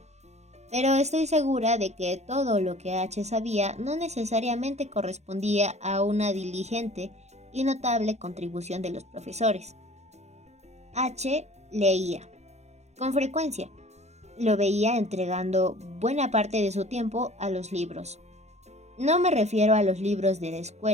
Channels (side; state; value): left; late; 0.32 ms